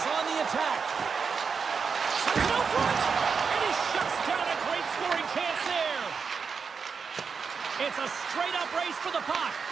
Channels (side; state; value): left; quieter; 5.6 dB